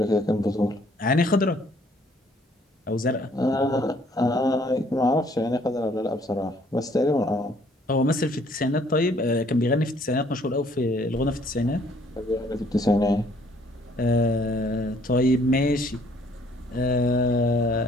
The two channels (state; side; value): normal; both; correlation 0.62